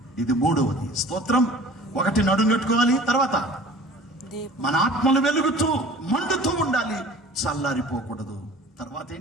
ఇది మూడవది. స్తోత్రం. ఒకటి నడుం కట్టుకోవాలి, తర్వాత మన ఆత్మలు వెలుగుతూ మండుతూ ఉండాలి, చల్లారిపోకూడదు. తర్వాత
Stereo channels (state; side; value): normal; both; correlation 0.45